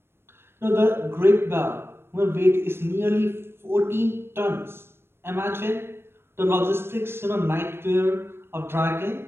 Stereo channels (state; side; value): late; left; 0.12 ms